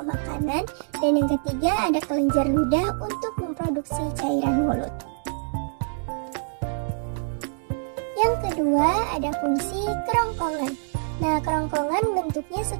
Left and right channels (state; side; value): silent; left; digital silence